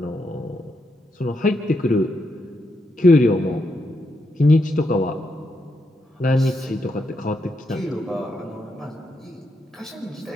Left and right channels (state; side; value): normal; both; correlation 0.81